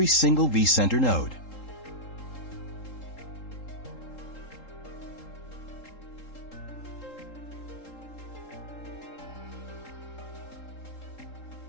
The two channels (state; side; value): late; right; 3.8 ms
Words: single vCenter node.